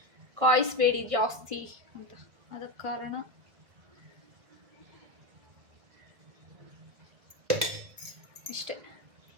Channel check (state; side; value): late; left; 1.5 ms